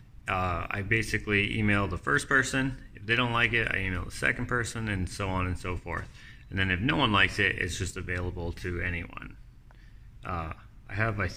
I basically email the first person. If they don't like it, I email the second person, and so on and so forth. And then if no one likes it, it's just available to anyone. I have, I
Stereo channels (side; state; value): both; identical; correlation 1.00